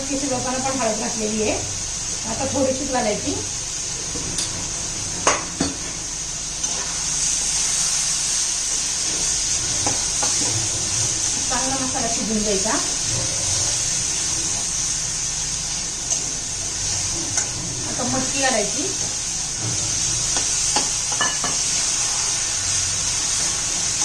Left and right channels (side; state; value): both; identical; correlation 1.00